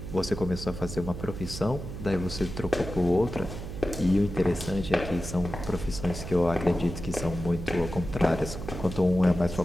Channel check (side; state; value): right; noise; hum, 8 dB below the sound